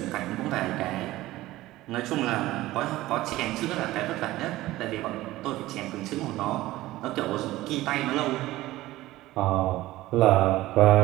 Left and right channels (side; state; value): left; quieter; 17.0 dB